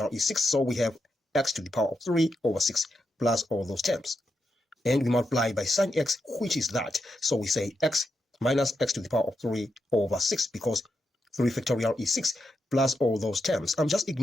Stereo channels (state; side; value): normal; both; correlation 0.85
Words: is 6. So we have x to the power of 3 over 6 plus all those terms. And we multiply by sine x, which is that. So we say x minus x to the power of 3 over 6, because 3 factorial is 6 plus all those terms. I'm just